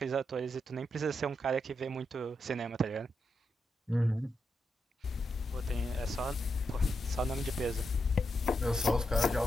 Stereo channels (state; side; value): normal; both; correlation 0.84